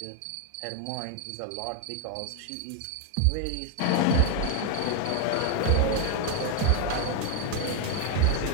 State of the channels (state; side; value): different; both; correlation 0.01